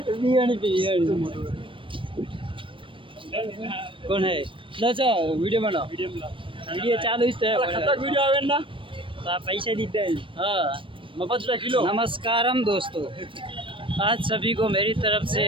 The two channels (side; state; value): left; late; 0.25 ms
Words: कौन है लचा वीडियो बनाओ वीडियो चालू वीडियो आवे ना पैसे दीते हैं हाँ मफत किलो। नमस्कारम दोस्तों आज सभी को मेरी तरफ से